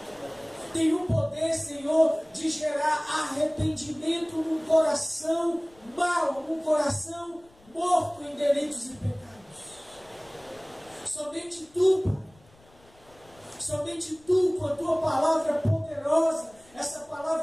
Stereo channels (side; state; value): left; noise; rumble, 29 dB below the sound